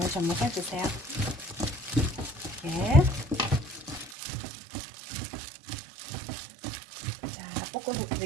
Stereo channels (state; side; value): drops out; left; at 4.2 s